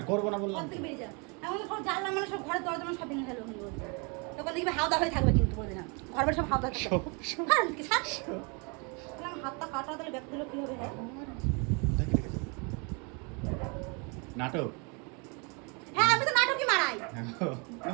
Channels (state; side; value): quieter; left; 32.5 dB